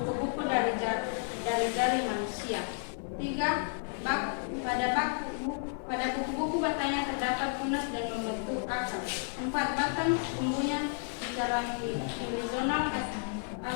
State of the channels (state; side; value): silent; right; 55 dB below the other